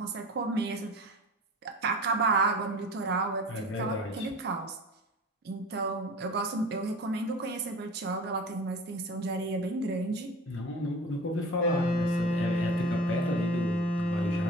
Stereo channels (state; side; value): normal; both; correlation 0.39